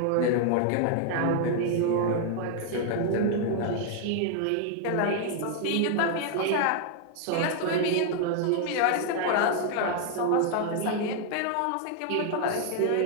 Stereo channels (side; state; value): both; different; correlation 0.00